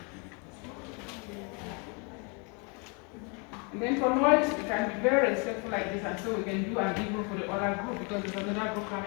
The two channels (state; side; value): quieter; right; 34.0 dB